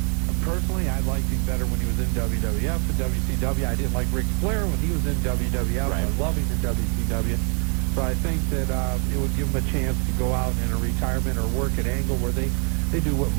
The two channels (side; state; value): left; quieter; 37.4 dB